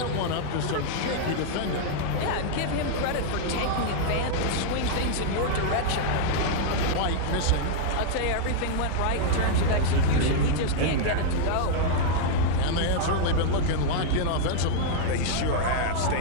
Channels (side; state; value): both; different; correlation -0.01